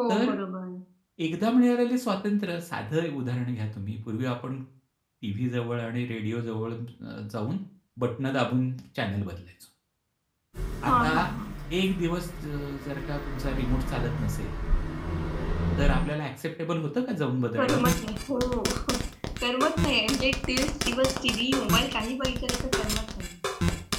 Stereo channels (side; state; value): both; identical; correlation 1.00